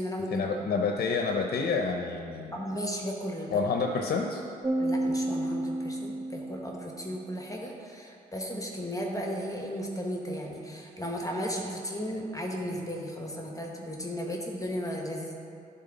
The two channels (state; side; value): normal; both; correlation 0.56